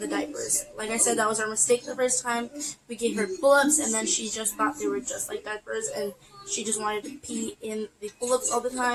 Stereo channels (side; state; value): both; identical; correlation 1.00